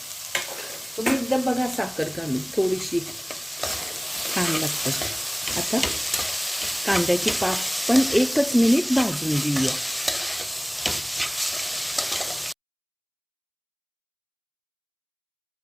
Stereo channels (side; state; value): both; identical; correlation 1.00